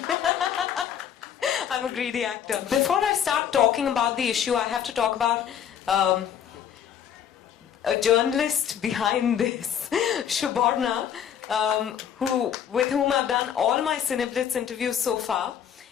I'm a greedy actor. Before I start talking about the issue, I have to talk about a journalist behind this, Suborna, with whom I've done all my Cineblitz interviews so far.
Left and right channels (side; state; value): right; quieter; 9.0 dB